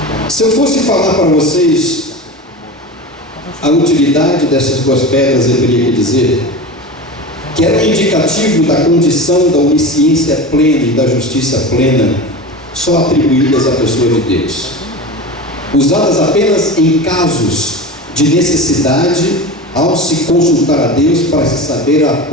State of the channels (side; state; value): both; normal; correlation 0.29